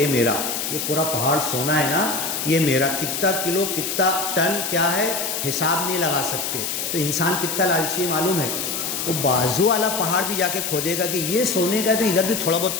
میرا، یہ پورا پہاڑ سونا ہے نا یہ میرا، کتنا کلو کتنا ٹن کیا ہے حساب نہیں لگا سکتے۔ تو انسان کتنا لالچی ہے معلوم ہے، وہ بازو والا پہاڑ بھی جا کے کھودے گا کہ یہ سونے کا ہے تو ادھر بھی تھوڑا بہت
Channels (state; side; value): noise; left; hiss, 2 dB below the sound